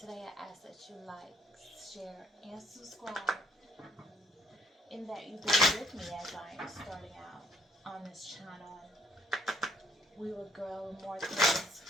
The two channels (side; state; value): both; normal; correlation 0.66